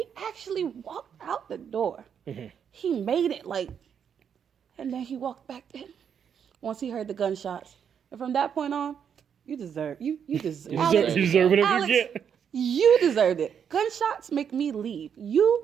actually walked out the door. Mm-hmm. He made it, like, and then he walked back in once he heard the gunshots. And from that point on, You deserve you deserve. You Alex, deserve whatever Alex, you get. you deserved it. Gunshots make me leave.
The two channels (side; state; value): left; quieter; 7.8 dB